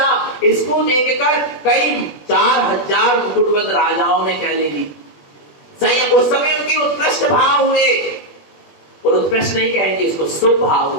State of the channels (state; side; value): late; right; 21 ms